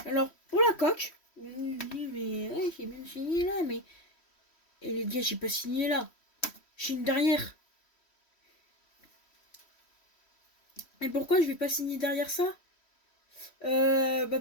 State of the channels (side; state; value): right; late; 3.1 ms